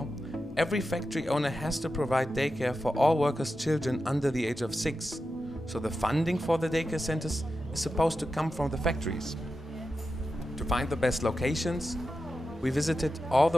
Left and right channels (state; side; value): normal; both; correlation 0.90